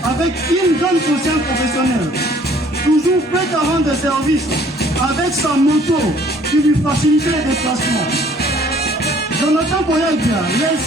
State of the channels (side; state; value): both; normal; correlation 0.57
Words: avec une grande conscience professionnelle, toujours prêt à rendre service avec sa moto qui lui facilitait les déplacements. Jonathan Koyabia